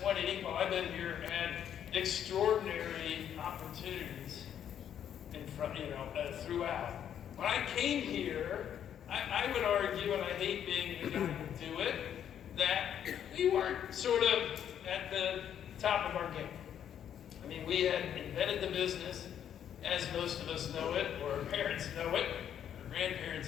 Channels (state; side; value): quieter; right; 9.5 dB